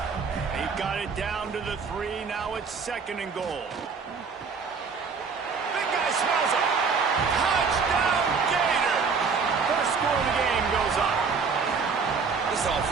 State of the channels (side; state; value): left; quieter; 5.3 dB